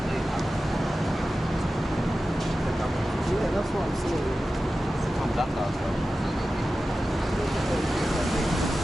Yeah, that's what I'm saying.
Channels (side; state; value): both; normal; correlation 0.94